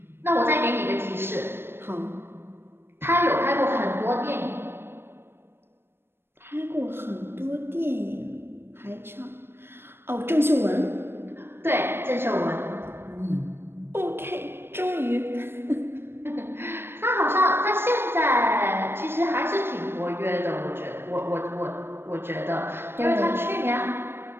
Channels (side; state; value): left; late; 0.11 ms